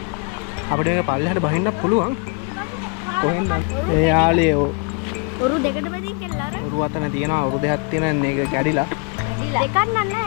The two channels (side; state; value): right; quieter; 34.0 dB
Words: අපිට මේක පල්ලෙහාට බහින්න පුළුවන්. කොහෙන්ද? ඒ යාළුවෝ ඔරු දෙකට බෙදී කියලා අර. ඔරු අතන තියෙනවා. ඔරු දෙකක් තියෙන මේක කැඩිලා. දෙකක් නෑ